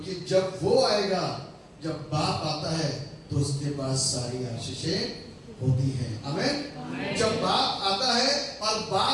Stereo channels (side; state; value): both; identical; correlation 1.00